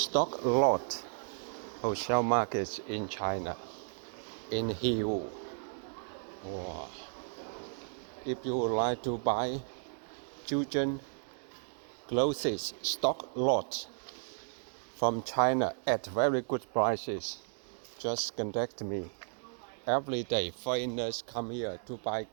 lot wholesale market in China, in Yiwu. Wow. If you would like to buy children clothes stock lot from China at very good prices, just contact me. Every day foreigners come here to buy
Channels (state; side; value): silent; left; digital silence